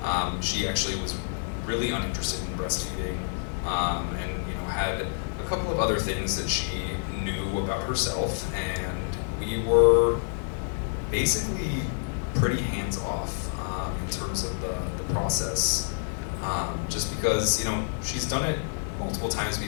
actually was really uninterested in breastfeeding, and had a couple of other things that she knew about herself, and we were basically pretty hands off in terms of the process, just because she's done it multiple times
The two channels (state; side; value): silent; right; digital silence